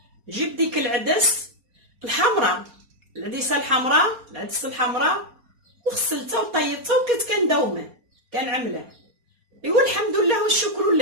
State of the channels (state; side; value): late; left; 4.2 ms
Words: جبت ديك العدس الحمراء، العدسه الحمراء، وغسلتها وطيبتها وكنت كنداومه كنعمله. ايوا الحمد لله والشكر